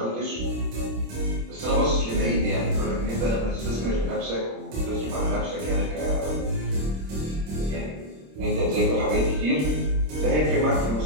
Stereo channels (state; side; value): late; left; 26 ms